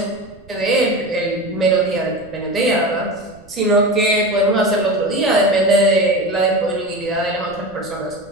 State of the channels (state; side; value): noise; right; rumble, 25 dB below the sound